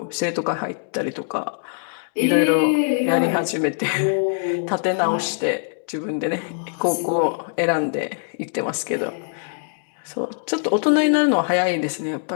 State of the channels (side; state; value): right; silent; digital silence